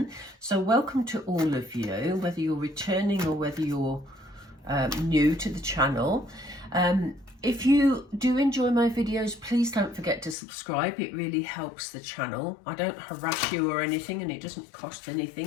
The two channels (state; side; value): drops out; right; at 10.4 s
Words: So welcome to all of you, whether you're returning or whether you're new to the channel. If you do enjoy my videos, please don't forget to subscribe. It really helps the channel. I don't harass you or anything, and it doesn't cost